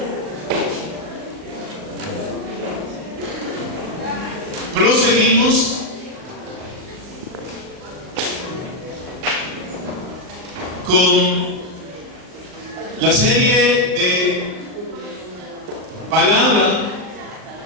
proseguimos con la serie de palabra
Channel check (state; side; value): late; left; 39 ms